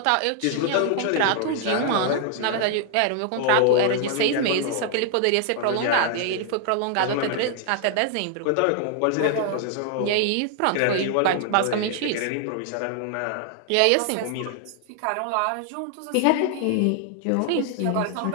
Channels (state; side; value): different; both; correlation 0.00